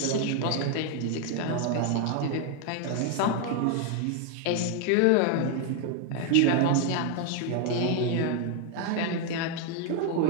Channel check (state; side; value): different; both; correlation 0.00